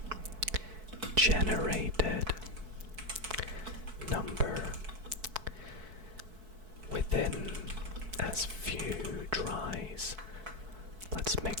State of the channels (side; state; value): left; late; 4.6 ms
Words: generated number within as few tries. Let's